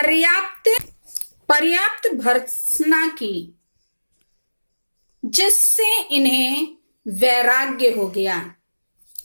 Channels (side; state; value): both; inverted; correlation -1.00